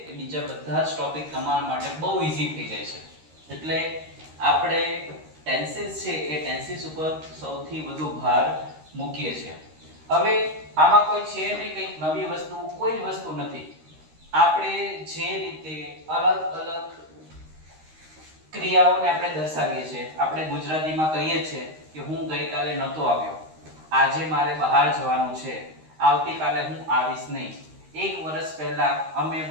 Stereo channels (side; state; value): left; late; 13 ms